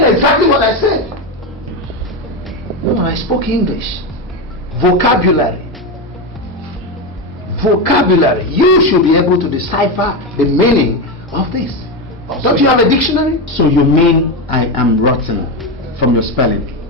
exactly what I said. No, I spoke English. Vocabulary. Vocabulary. You should be able to decipher the meaning of this. Don't you have a dictionary? So you mean I am rotten from your spelling?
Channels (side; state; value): both; normal; correlation 0.14